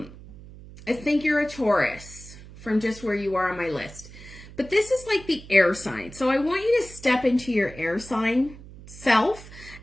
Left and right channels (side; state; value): right; noise; hum, 17 dB below the sound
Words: think you're a Taurus from just where you are on my list. But this is like the air sign. So I want you to step into your air sign self.